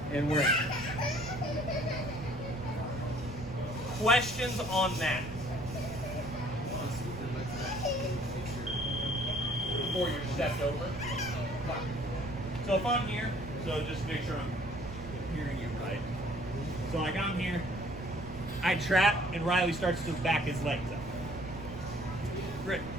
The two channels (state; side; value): noise; right; rumble, 14 dB below the sound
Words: and we're in. Questions on that? Before you're stepped over. So if I'm here, so just make sure I'm hearing you right. So like I'm here, I trap, and Riley starts to back his legs up. Great.